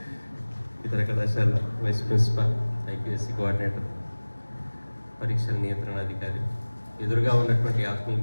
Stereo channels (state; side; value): inverted; both; correlation -1.00